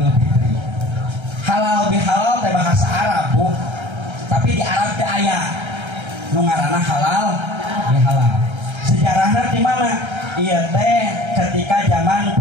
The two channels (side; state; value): left; late; 1.3 ms